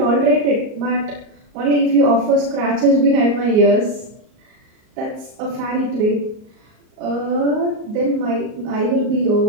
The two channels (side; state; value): left; late; 38 ms